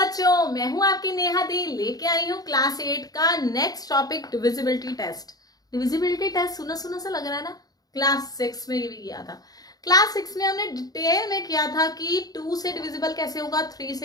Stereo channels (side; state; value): right; late; 0.18 ms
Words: बच्चों, मैं हूं आपकी नेहा दी, लेके आई हूं क्लास 8 का next topic divisibility test. Divisibility test सुना सुना सा लग रहा है ना। क्लास 6 में ये भी किया था। क्लास 6 में हमने डिटेल में किया था कि 2 से डिविजिबल कैसे होगा, 3